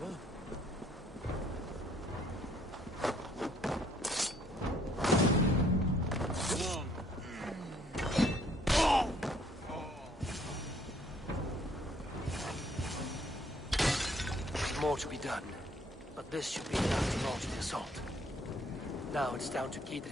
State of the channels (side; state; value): both; normal; correlation 0.63